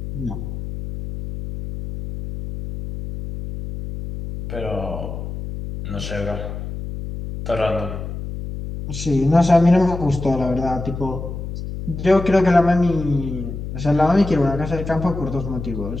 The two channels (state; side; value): noise; left; hum, 7 dB below the sound